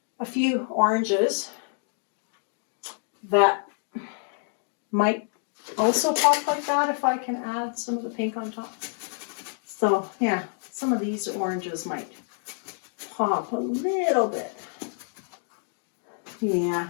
a few oranges that might also pop like that if I can add some of the pink on top. So yeah, some of these oranges might pop a little bit.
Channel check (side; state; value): right; silent; 60 dB below the other